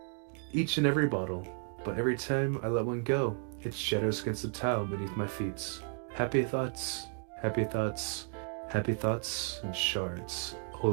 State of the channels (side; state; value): left; quieter; 39.4 dB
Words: Each and every bottle. But every time I let one go, it shatters against the tile beneath my feet. Happy thoughts, happy thoughts, happy thoughts, and shards